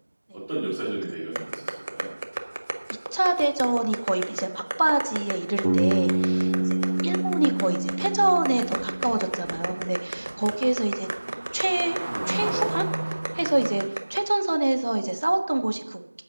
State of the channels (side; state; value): both; inverted; correlation -1.00